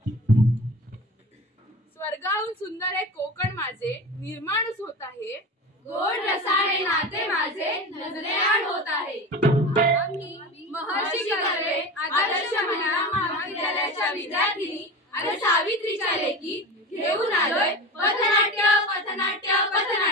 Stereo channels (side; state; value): both; normal; correlation 0.29